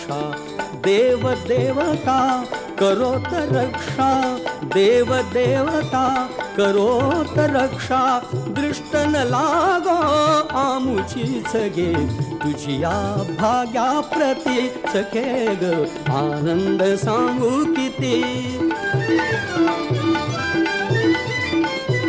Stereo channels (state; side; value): identical; both; correlation 1.00